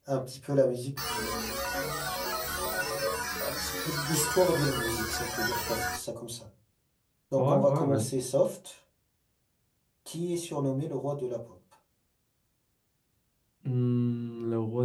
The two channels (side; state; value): both; identical; correlation 1.00